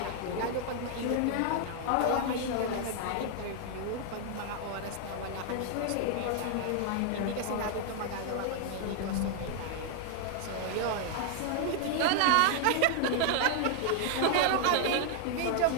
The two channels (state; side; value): different; both; correlation 0.00